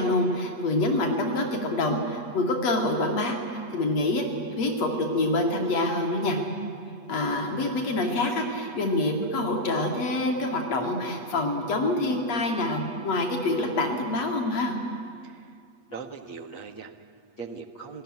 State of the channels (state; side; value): late; right; 8.3 ms